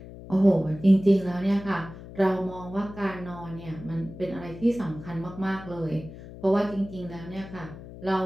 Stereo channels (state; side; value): noise; left; hum, 15 dB below the sound